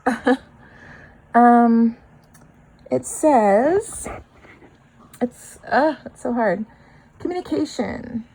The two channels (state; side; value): identical; both; correlation 1.00